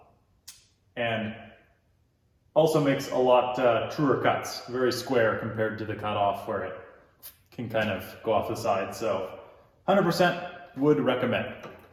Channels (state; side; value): identical; both; correlation 1.00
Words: And also makes a lot truer cuts, very square compared to the cutoff where it can kind of go off the side. So 100% would recommend.